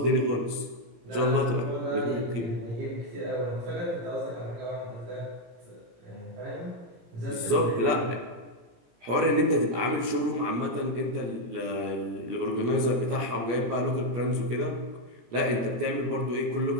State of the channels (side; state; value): left; late; 17 ms